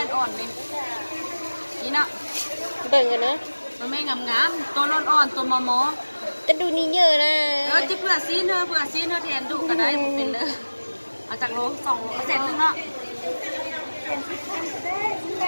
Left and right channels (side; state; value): both; inverted; correlation -1.00